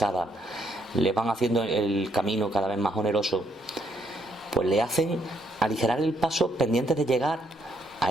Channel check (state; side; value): normal; both; correlation 0.74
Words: les van haciendo el camino cada vez más oneroso, pues le hacen aligerar el paso pendientes de llegar